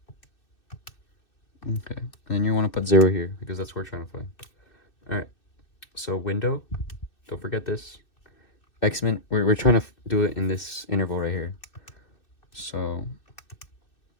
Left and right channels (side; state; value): right; late; 2.6 ms